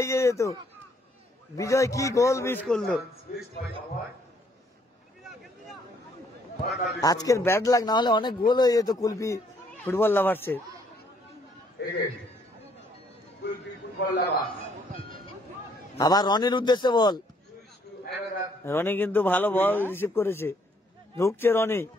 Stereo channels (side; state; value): both; normal; correlation 0.67